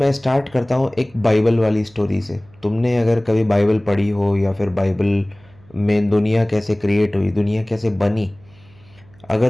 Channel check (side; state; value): right; noise; hum, 27 dB below the sound